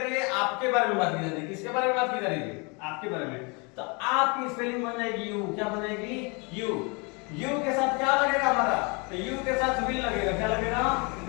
है? आपके बारे में बात की जा रही है। किसके बारे में बात की जा रही है? आपके बारे में। तो आपकी स्पेलिंग बन जाएगी यू। क्या बनेगी? यू। यू के साथ क्या लगेगा हमारा? तो यू के साथ विल लगेगा। क्या लगेगा?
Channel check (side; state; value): right; quieter; 30.9 dB